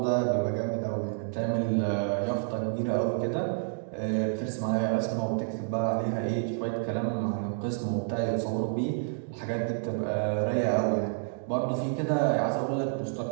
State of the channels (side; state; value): left; silent; digital silence